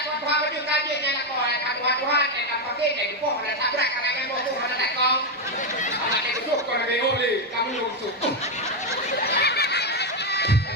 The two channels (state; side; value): normal; both; correlation 0.05